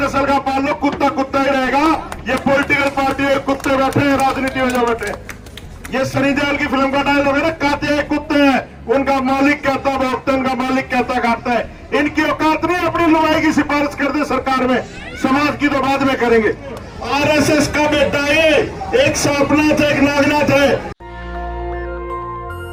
का पाल लो, कुत्ता कुत्ता ही रहेगा। ये पॉलिटिकल पार्टी है, कुत्ते बैठे हैं राजनीति में जो बैठे। ये सनी देओल की फिल्म का डायलॉग है ना, काते हैं कुत्ते हैं, उनका मालिक कहता भोगता, उनका मालिक कहता खाता है। इनकी औकात नहीं अपनी लुगाई की सिफारिश कर दे सरकार में, समाज की तो बाद में करेंगे। आरएसएस का बेटा ये एक सांपनाथ है, एक नागनाथ है।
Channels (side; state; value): both; identical; correlation 1.00